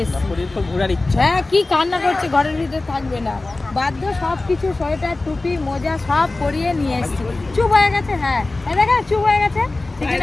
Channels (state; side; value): quieter; right; 3.1 dB